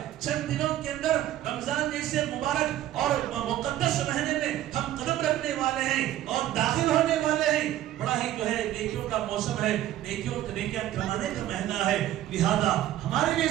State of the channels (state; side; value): quieter; left; 13.1 dB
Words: چند دنوں کے اندر رمضان جیسے مبارک اور مقدس مہینے میں ہم قدم رکھنے والے ہیں اور داخل ہونے والے ہیں. بڑا ہی جو ہے نیکیوں کا موسم ہے, نیکیاں کمانے کا مہینہ ہے. لہذا ہمارے لیے